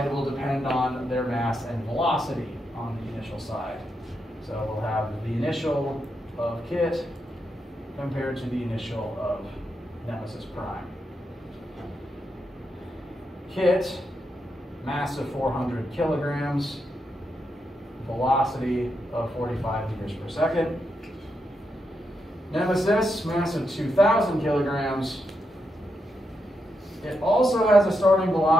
will depend on their mass and velocity on the initial side. So we'll have the initial of Kit compared to the initial of Nemesis Prime. Kit, mass of 400 kilograms, velocity of 45 meters per second. Nemesis, mass of 2,000 kilograms. It also has a starting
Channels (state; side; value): normal; both; correlation 0.83